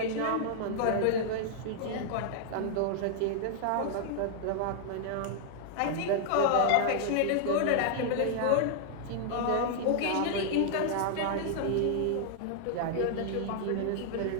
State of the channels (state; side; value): different; both; correlation -0.01